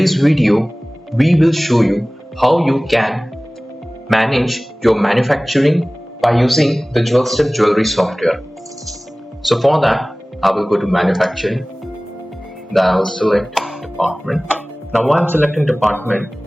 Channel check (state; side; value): normal; both; correlation 0.98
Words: video, we will show you how you can manage your manufacturing by using the Jewelsteps Jewelry Software. So for that, I will go to manufacturing. Then I will select department. Now while I'm selecting department,